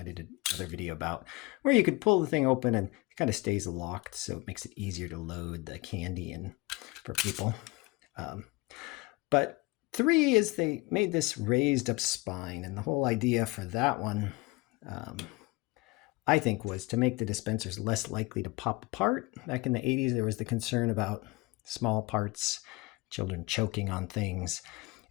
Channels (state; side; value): quieter; right; 23.0 dB